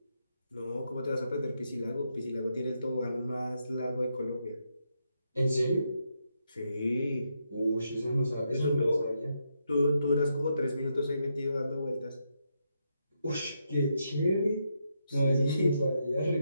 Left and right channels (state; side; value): inverted; both; correlation -0.81